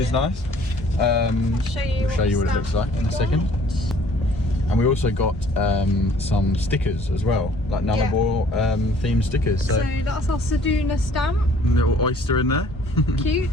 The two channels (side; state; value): both; normal; correlation 0.57